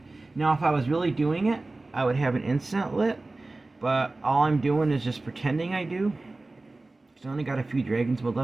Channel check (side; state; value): left; quieter; 3.1 dB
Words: Now if I was really doing it, I would have an incense lit, but all I'm doing is just pretending I do. I only got a few dragon's blood